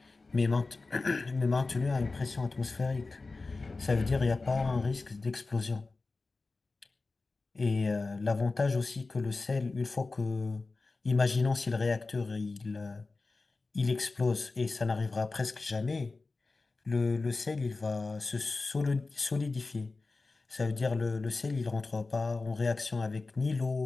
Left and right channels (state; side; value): quieter; right; 3.7 dB